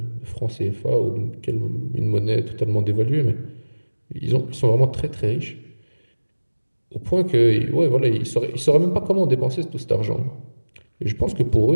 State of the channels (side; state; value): both; inverted; correlation -1.00